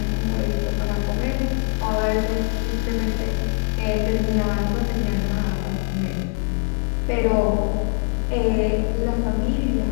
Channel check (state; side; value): silent; right; 64 dB below the other